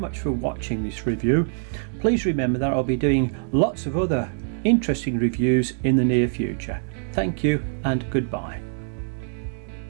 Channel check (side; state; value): left; silent; digital silence